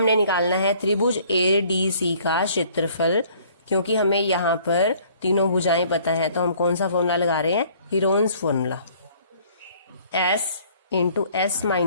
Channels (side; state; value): both; inverted; correlation -0.57